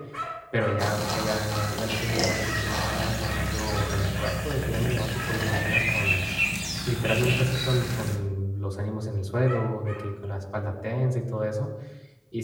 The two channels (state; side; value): identical; both; correlation 1.00